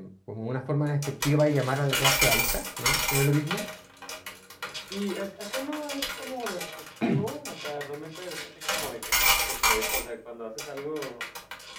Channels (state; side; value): identical; both; correlation 1.00